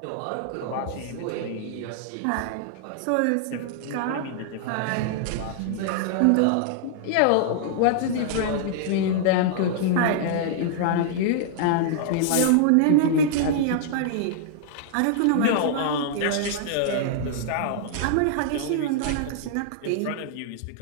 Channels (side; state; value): both; different; correlation -0.01